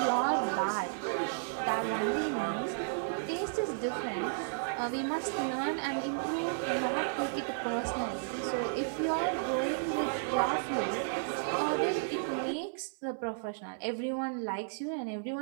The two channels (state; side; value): silent; left; 56 dB below the other